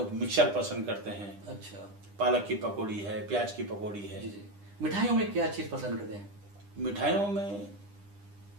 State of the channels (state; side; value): late; left; 9.9 ms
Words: मिक्सर पसंद करते हैं। अच्छा पालक की पकौड़ी है, प्याज की पकौड़ी है। जी जी। मिठाइयों में क्या चीज़ पसंद करते हैं? मिठाइयों में